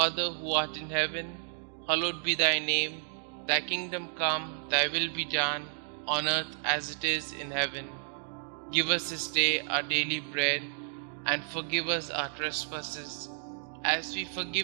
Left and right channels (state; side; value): silent; left; digital silence